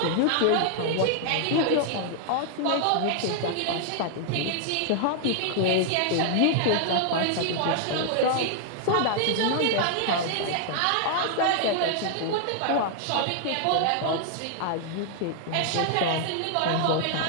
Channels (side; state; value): both; different; correlation -0.01